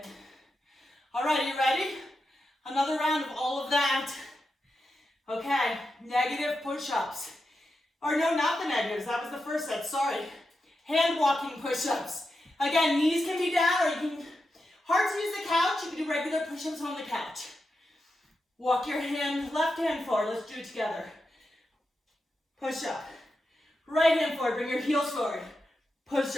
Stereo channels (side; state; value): both; normal; correlation 0.88